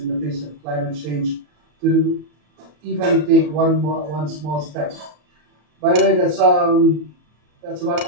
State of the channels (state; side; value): late; left; 34 ms